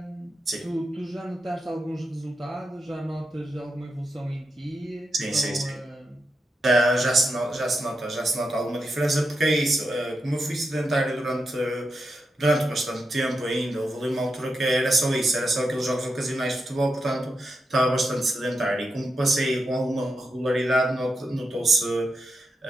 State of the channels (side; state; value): both; normal; correlation 0.86